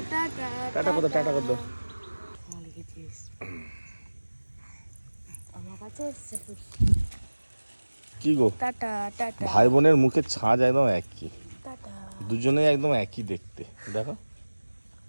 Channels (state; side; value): inverted; both; correlation -1.00